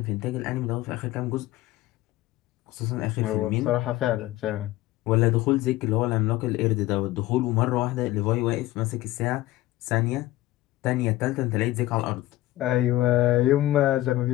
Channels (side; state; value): right; quieter; 16.5 dB